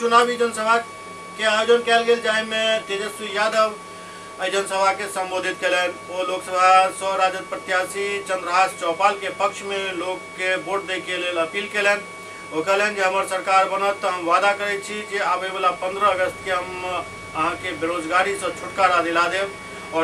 जनसभा के आयोजन कयल गेल, जाहि में तेजस्वी यादव जनसभा के संबोधित कलन। वो लोकसभा सौ राजद प्रत्याशी चंद्रहास चौपाल के पक्ष में लोग के वोट दे के लिए अपील कलन। वो कहलन जे हमर सरकार बनत तो हम वादा करे छी जे आवे वाला 15 अगस्त के हम अहाँ के बेरोजगारी से छुटकारा दिला देव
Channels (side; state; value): both; identical; correlation 1.00